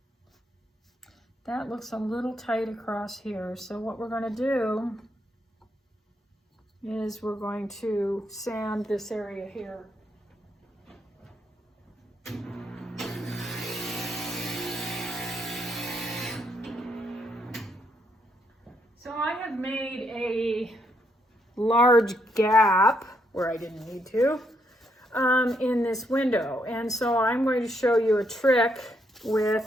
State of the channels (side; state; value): both; normal; correlation 0.75